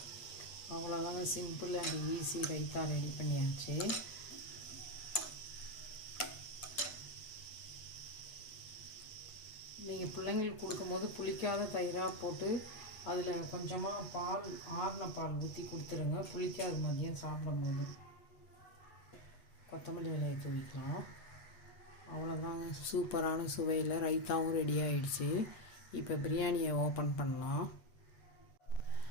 அவ்வளோதாங்க, simple and easy raita ready பண்ணியாச்சு. நீங்கள் பிள்ளைங்களுக்கு கொடுக்கும்போது புளிக்காத தயிராக போட்டு அதில் கொஞ்சமாக பால், ஆறின பால் ஊற்றி கொடுத்துருங்க. புளிக்காது மதியம் சாப்பிடும்போது. கொத்தமல்லி இலையை தூவிக்கலாம். அவ்வளோதாங்க, சூப்பரான சுவையில் ரைத்தாவும் ரெடி ஆகிடுச்சு. இப்போ பிரியாணியை ஓப்பன் பண்ணலாம்.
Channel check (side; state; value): right; late; 8.2 ms